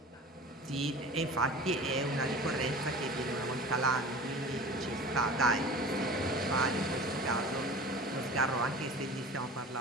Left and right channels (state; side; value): normal; both; correlation 0.38